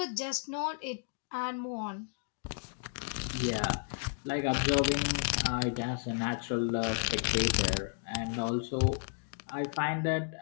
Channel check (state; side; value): silent; right; digital silence